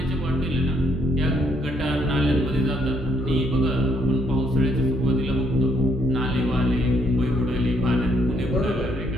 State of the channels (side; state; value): both; normal; correlation 0.71